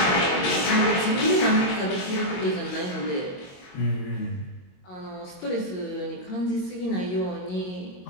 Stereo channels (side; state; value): right; late; 22 ms